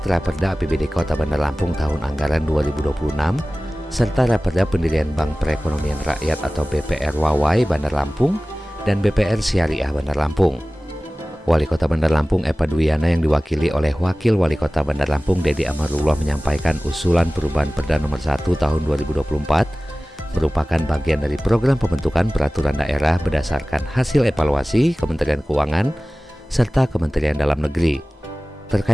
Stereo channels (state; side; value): normal; both; correlation 0.98